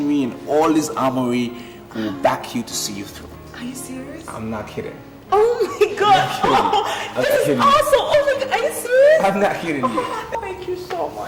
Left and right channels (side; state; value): both; identical; correlation 1.00